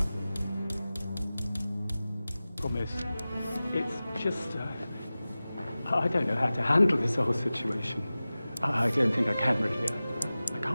Promise. It's just, I don't know how to handle this whole situation. I don't think I can really. I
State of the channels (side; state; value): both; inverted; correlation -0.97